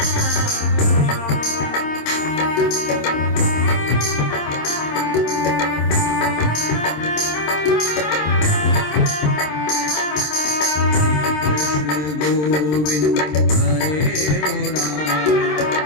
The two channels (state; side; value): late; right; 26 ms